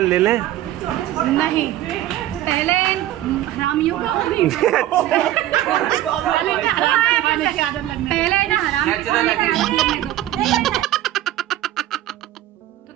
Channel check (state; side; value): quieter; left; 13.7 dB